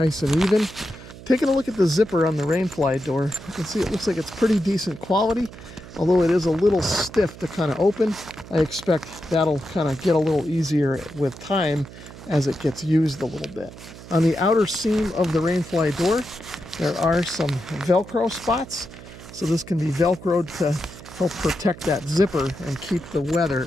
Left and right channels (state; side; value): noise; right; hum, 16 dB below the sound